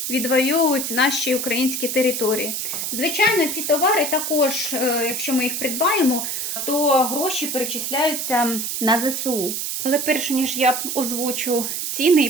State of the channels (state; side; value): noise; right; hiss, 3 dB below the sound